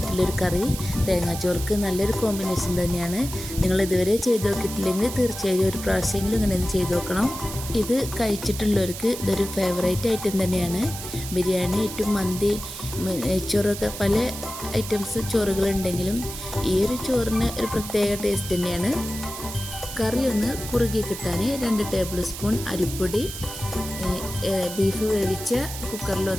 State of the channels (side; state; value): right; noise; hiss, 9 dB below the sound